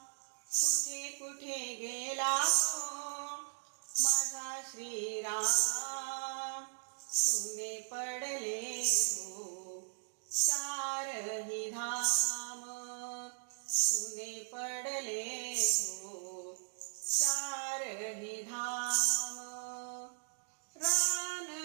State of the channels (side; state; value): left; silent; digital silence